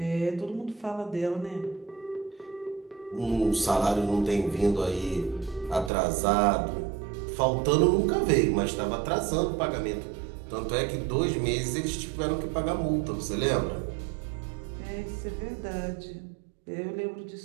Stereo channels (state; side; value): drops out; left; at 5.9 s